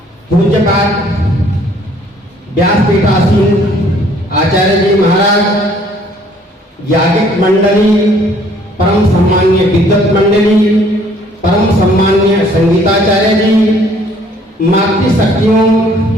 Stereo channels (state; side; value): normal; both; correlation 0.60